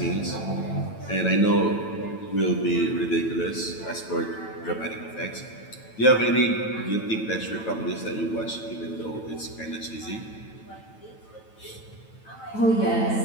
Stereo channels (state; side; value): late; right; 9.1 ms